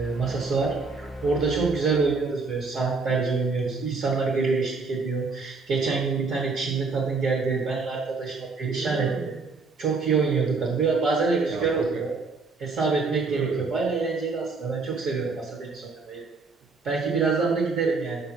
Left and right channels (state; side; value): quieter; left; 4.2 dB